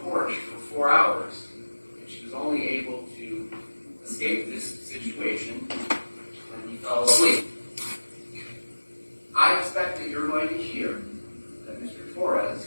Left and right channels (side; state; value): both; inverted; correlation -1.00